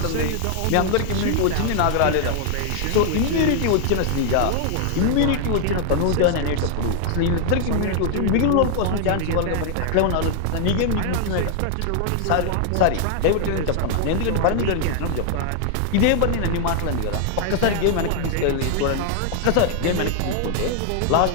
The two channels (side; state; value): both; different; correlation 0.00